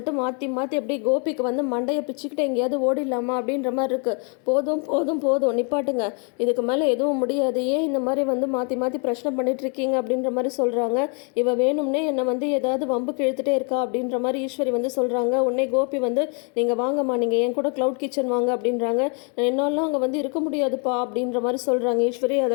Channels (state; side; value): quieter; right; 38.1 dB